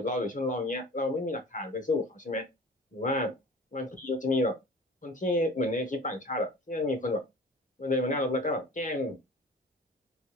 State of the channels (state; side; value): normal; both; correlation 0.41